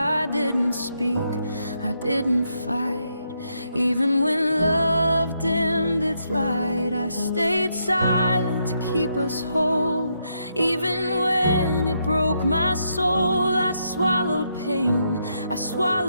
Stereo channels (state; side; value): inverted; both; correlation -0.79